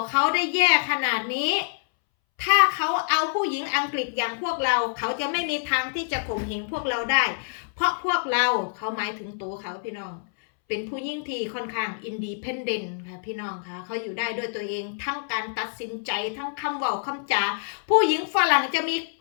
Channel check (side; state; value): right; silent; 61 dB below the other